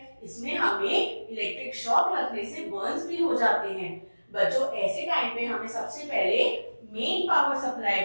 इसमें हमें इलेक्ट्रिक शॉक लगने से बर्न्स भी हो जाते हैं। बच्चों ऐसे टाइम पे हमें सबसे पहले मेन पावर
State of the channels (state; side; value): inverted; both; correlation -1.00